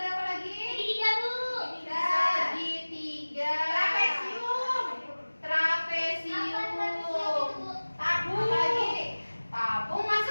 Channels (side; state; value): both; inverted; correlation -1.00